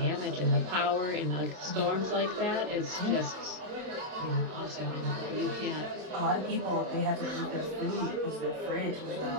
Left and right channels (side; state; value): left; late; 27 ms